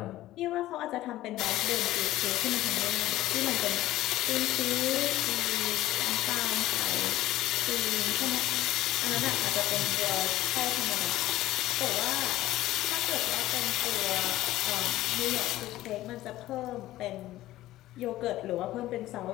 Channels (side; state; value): right; quieter; 15.4 dB